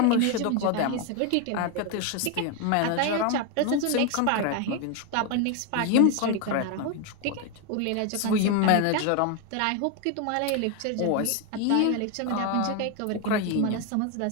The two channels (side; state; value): both; different; correlation 0.01